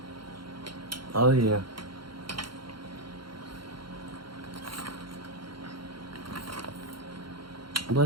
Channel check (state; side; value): late; left; 0.73 ms